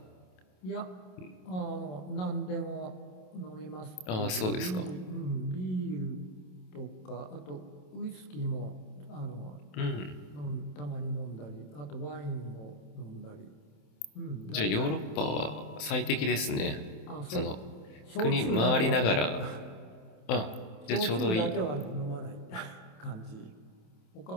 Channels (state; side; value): late; right; 27 ms